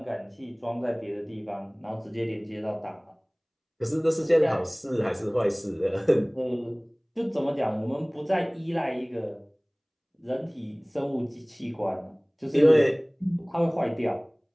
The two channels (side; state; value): both; identical; correlation 1.00